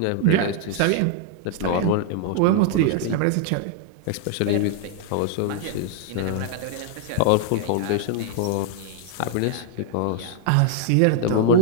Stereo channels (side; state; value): both; different; correlation 0.00